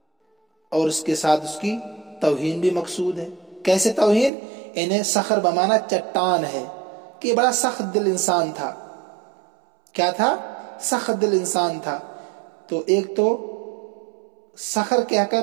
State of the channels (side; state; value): left; drops out; at 4.3 s